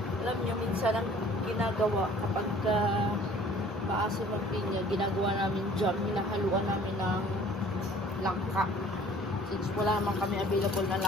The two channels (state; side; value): normal; both; correlation 0.52